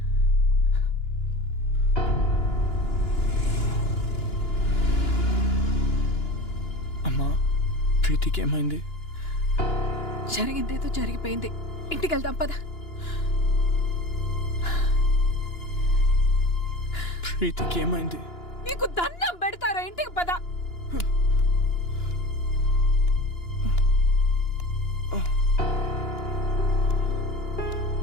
అమ్మా, ప్రీతికి ఏమైంది? జరిగిందేదో జరిగిపోయింది. ఇంటికి వెళ్దాం పద. ప్రీతికి ఏమైంది? నీకు దండం పెడతారా? ఇంటికి పద.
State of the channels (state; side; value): late; right; 2.9 ms